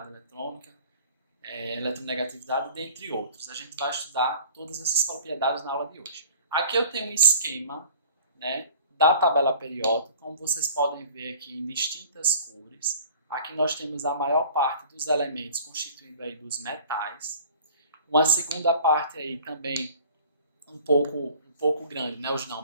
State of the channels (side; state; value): both; inverted; correlation -0.47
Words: eletrônica, eletronegatividade, dentre outros. A gente vai estudar todas essas propriedades na aula de hoje. Aqui eu tenho um esquema, né, da tabela periódica, como vocês podem ver aqui em distintas cores. Aqui nós temos a maior parte dos elementos constituindo aí dos metais. Uma segunda parte aí também um pouco grande, né, os não